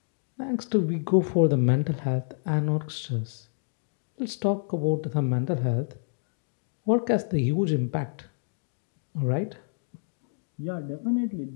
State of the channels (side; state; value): right; silent; digital silence